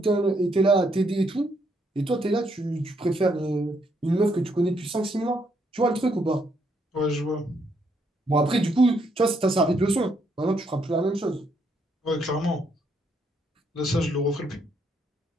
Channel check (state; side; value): normal; both; correlation 0.73